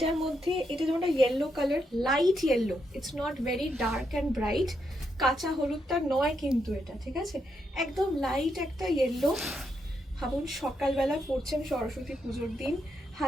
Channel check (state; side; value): normal; both; correlation 0.80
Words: মধ্যে এটা যেমন yellow colour, light yellow, it's not very dark and bright. কাঁচা হলুদটা নয় কিন্তু এটা, ঠিক আছে, একদম লাইট একটা ইয়েলো। ভাবুন সকালবেলা পড়ছেন সরস্বতী পুজোর দিন,